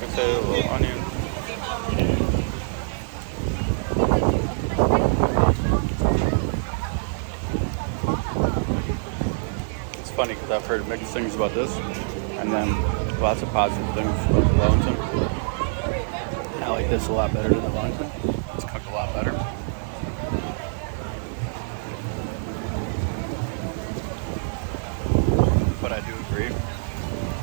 potato, a little onion. It's funny because I've heard mixed things about this, and then lots of positive things about the Wellington. I like this a lot better than the Wellington. It's cooked a lot better. But I do agree,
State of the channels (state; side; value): silent; left; digital silence